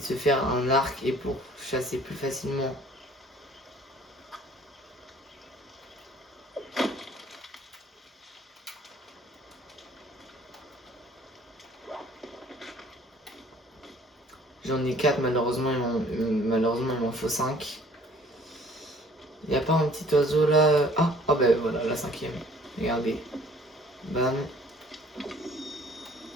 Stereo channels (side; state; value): both; normal; correlation 0.55